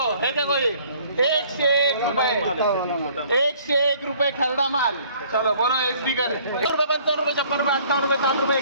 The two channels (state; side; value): inverted; both; correlation -0.57